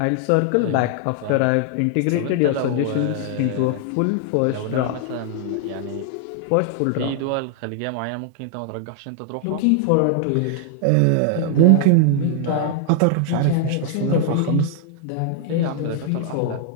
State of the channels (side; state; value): both; different; correlation 0.00